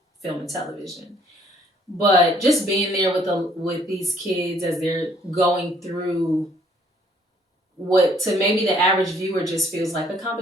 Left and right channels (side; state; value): both; normal; correlation 0.63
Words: film and television. But just being there with these kids as they're going through what to maybe the average viewer just feels like a